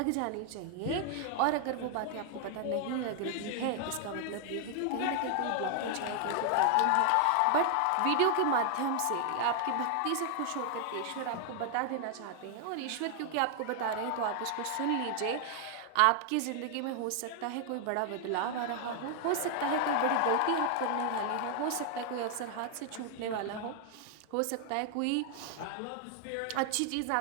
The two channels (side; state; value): both; different; correlation 0.00